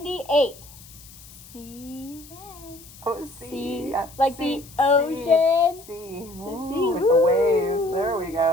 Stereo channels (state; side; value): noise; left; hiss, 20 dB below the sound